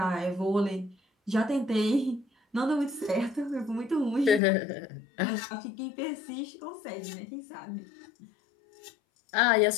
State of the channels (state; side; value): drops out; right; at 4.4 s